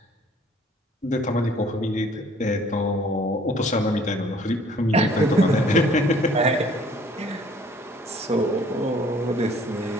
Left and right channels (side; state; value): both; normal; correlation 0.57